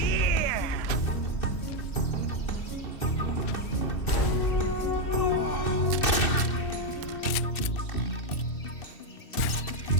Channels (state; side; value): late; right; 2.6 ms